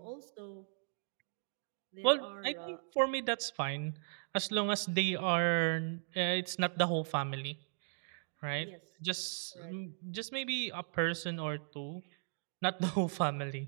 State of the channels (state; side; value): silent; left; digital silence